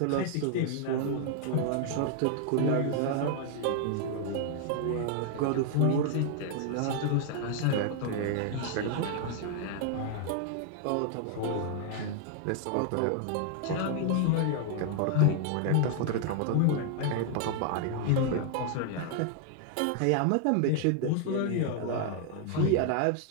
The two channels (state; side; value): different; both; correlation 0.00